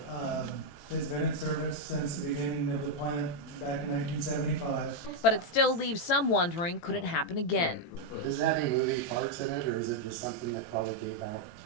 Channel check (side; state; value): right; late; 18 ms